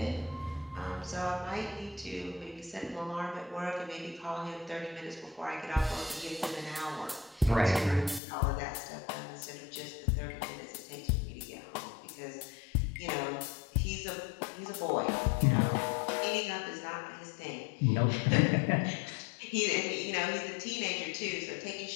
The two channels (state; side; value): drops out; right; at 8.2 s